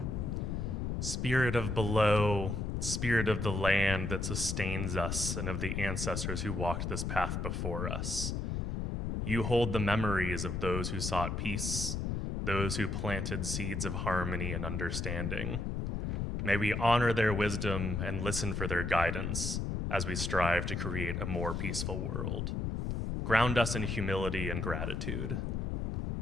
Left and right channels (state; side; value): noise; left; rumble, 2 dB below the sound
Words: Spirit of below, Spirit of the land that sustains us and of the ancestors who walked this path before us. You hold the memories of those who sought peace, those who planted seeds of harmony and understanding. May we honor their wisdom and listen for their guidance as we strive to create a more peaceful world. Ground us in humility and gratitude.